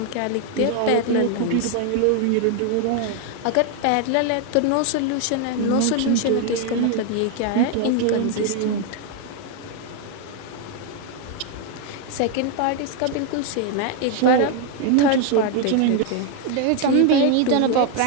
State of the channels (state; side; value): different; both; correlation 0.01